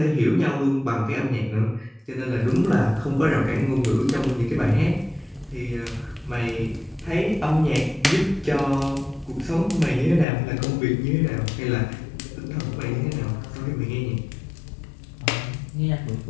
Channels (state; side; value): drops out; right; at 10.2 s